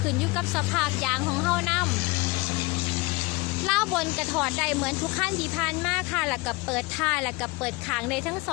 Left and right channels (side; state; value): right; quieter; 24.7 dB